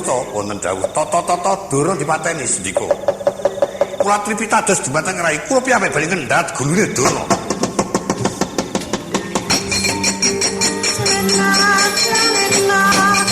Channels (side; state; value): both; identical; correlation 1.00